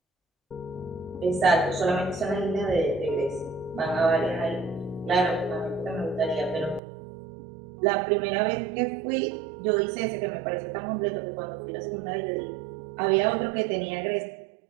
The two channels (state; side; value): drops out; left; at 6.8 s